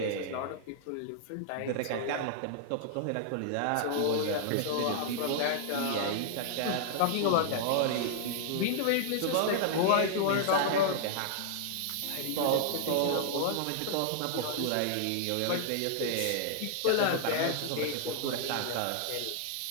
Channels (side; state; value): both; different; correlation -0.01